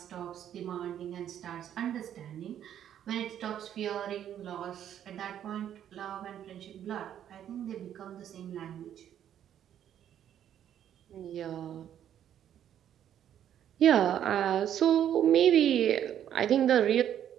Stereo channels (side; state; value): left; quieter; 10.2 dB